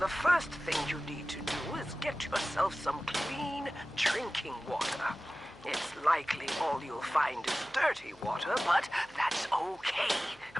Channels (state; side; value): noise; left; hum, 28 dB below the sound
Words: first thing you need to do is get yourself some clean drinking water. It's likely all you'll find is dirty water, but that's okay.